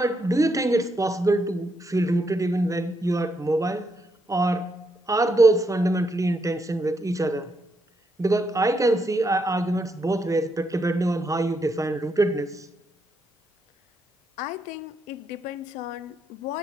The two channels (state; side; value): normal; both; correlation 0.79